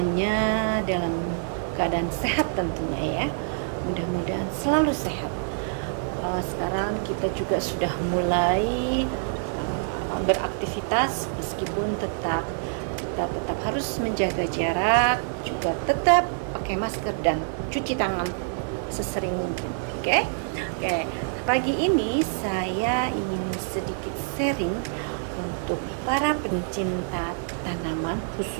dalam keadaan sehat tentunya ya. Mudah-mudahan selalu sehat. Sekarang kita juga sudah mulai beraktivitas, meskipun kita tetap harus menjaga jarak, juga tetap pakai masker dan cuci tangan sesering mungkin. Oke? Oke. Pagi ini saya ingin sedikit sharing untuk para pencinta tanaman,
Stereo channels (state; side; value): silent; left; 55 dB below the other